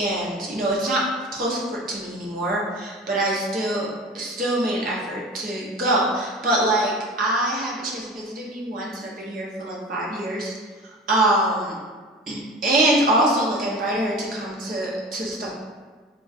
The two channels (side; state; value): both; normal; correlation 0.35